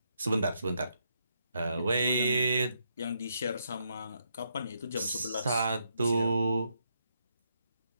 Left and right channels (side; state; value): both; inverted; correlation -0.78